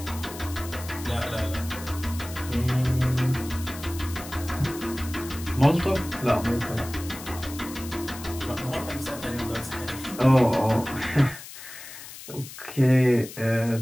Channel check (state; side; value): noise; left; hiss, 14 dB below the sound